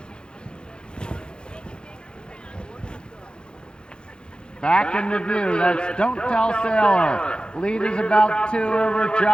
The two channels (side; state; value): right; late; 0.050 ms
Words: Back in the view, that's Don't Tell Sailor. Lead is about 2 over